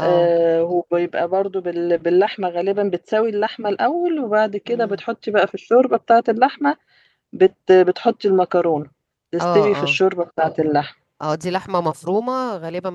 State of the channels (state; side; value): identical; both; correlation 1.00